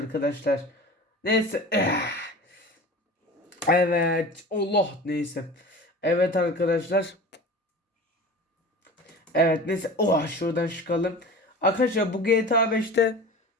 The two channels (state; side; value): normal; both; correlation 0.36